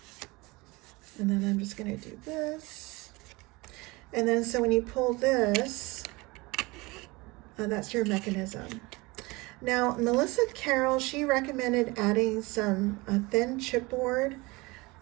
And then I'm just gonna do this. And then so when you pull this, that's your mechanism. Now, Melissa Carroll, she recommended adding some thin chipboard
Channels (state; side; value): quieter; left; 23.7 dB